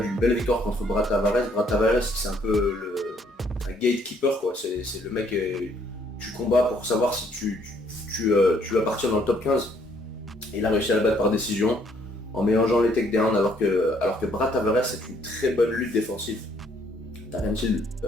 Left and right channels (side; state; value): both; normal; correlation 0.65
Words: d'une belle victoire contre Brad Tavares. Brad Tavares c'est un peu un gatekeeper quoi, c'est le mec tu combats pour savoir si tu appartiens dans le top 15. Et il a réussi à le battre par décision en mélangeant les takedowns alors que Brad Tavares c'est une très bonne lutte défensive. Darren Till,